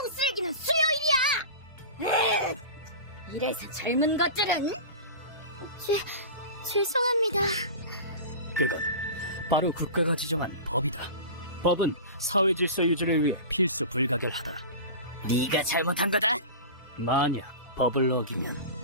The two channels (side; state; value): both; inverted; correlation -0.32